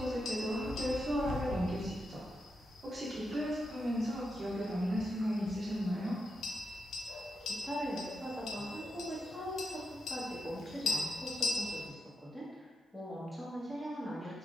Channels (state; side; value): normal; both; correlation 0.85